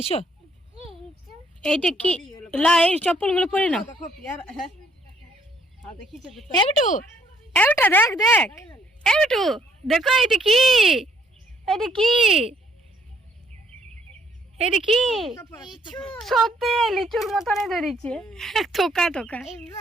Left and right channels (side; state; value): both; normal; correlation 0.67